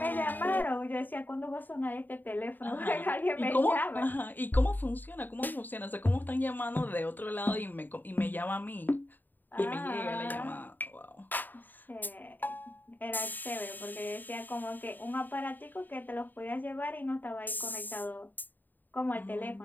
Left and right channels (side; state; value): right; late; 0.089 ms